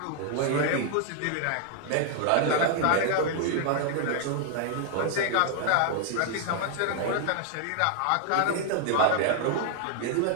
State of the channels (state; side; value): different; both; correlation 0.00